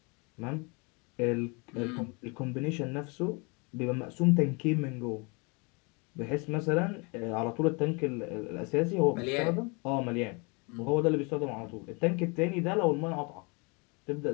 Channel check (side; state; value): right; quieter; 30.8 dB